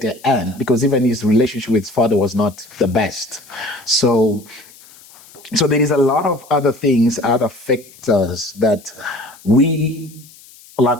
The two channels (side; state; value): left; noise; hiss, 23 dB below the sound